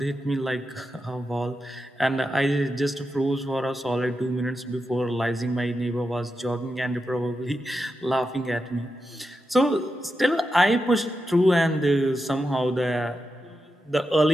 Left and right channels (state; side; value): normal; both; correlation 0.88